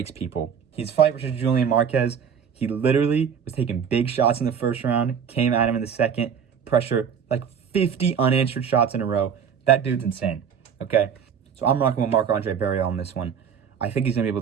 people. His fight versus Julian Marquez, he literally was taking big shots in the first round, came at him in the second, pressure, like 50 unanswered shots in a row. That dude's insane, okay? So I'm rocking with Marc-Andre Barriault on this one. I think he's going to be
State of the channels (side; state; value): left; quieter; 7.5 dB